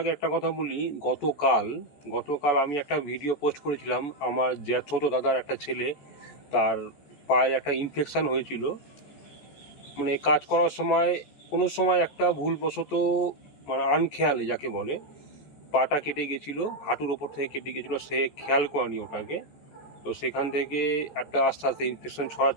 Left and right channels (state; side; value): late; right; 14 ms